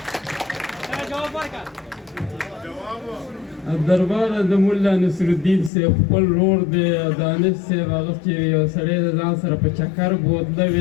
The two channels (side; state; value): right; drops out; at 5.7 s